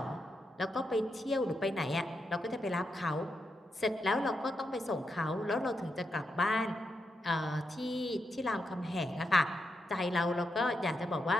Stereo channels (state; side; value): normal; both; correlation 0.84